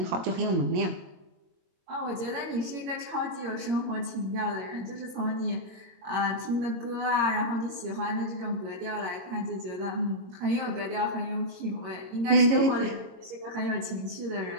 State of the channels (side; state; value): left; late; 21 ms